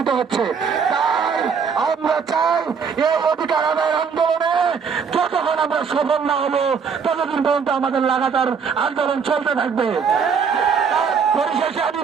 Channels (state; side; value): quieter; left; 6.2 dB